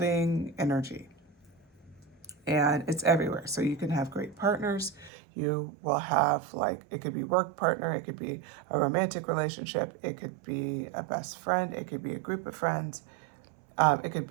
energy, and it's everywhere. So you can have great partners. You will have, like, it could be work partner, it could be a romantic relationship, it could be a best friend, it could be a group of friends, it could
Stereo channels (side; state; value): left; drops out; at 5.1 s